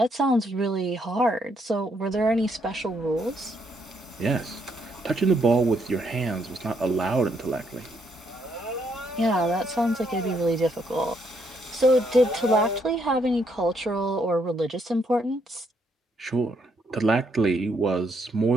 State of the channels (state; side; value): normal; both; correlation 0.73